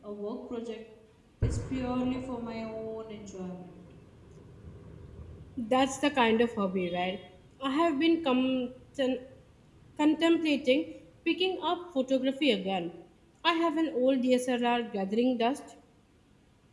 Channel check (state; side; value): identical; both; correlation 1.00